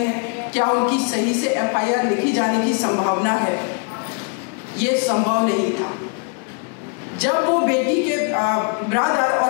क्या उनकी सही से एफआईआर लिखी जाने की संभावना है? ये संभव नहीं था। जब वो बेटी के ब्रदर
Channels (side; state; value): right; quieter; 36.0 dB